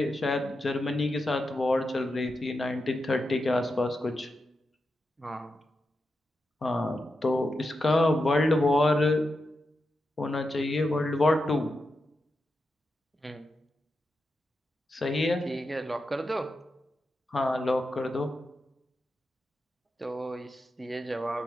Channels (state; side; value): normal; both; correlation 0.88